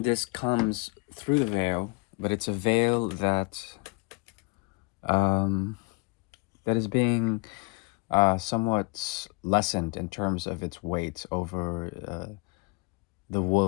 comes through the veil, but it's a veil that that is being somewhat lessened in terms of its weight over the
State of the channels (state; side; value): quieter; right; 28.6 dB